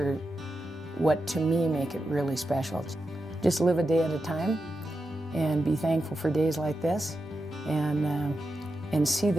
what, to me, make it really special. Just live a day at a time and be thankful for days like this, and see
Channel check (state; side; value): normal; both; correlation 0.88